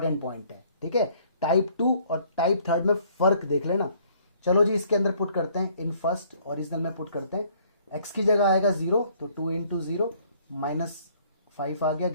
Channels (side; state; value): both; inverted; correlation -0.61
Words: पॉइंट है, ठीक है। टाइप 2 और टाइप 3 में फर्क देख लेना। चलो जी, इसके अंदर पुट करते हैं, इन फर्स्ट ओरिजिनल में पुट करते हैं। एक्स की जगह आएगा 0, तो 2 × 0 -5 आ गया